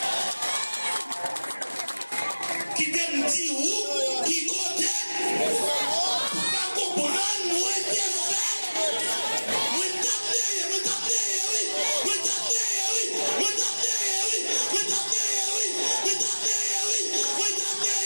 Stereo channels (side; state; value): both; inverted; correlation -1.00